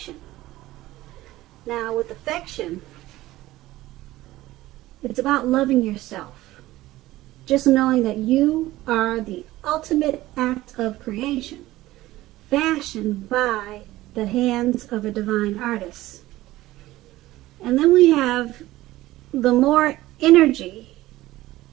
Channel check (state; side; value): quieter; left; 16.7 dB